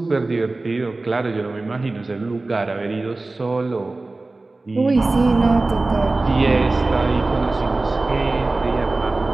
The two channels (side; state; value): left; quieter; 3.2 dB